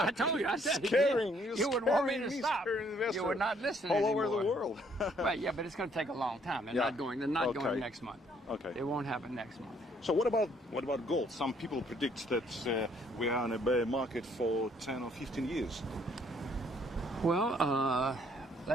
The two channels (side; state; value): both; normal; correlation 0.65